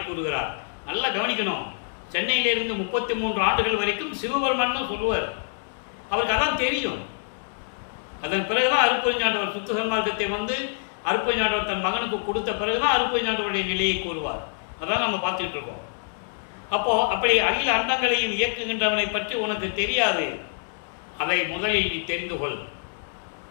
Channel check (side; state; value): right; silent; digital silence